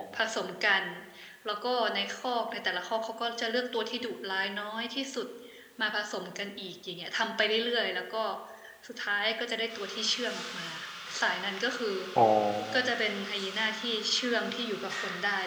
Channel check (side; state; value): both; identical; correlation 1.00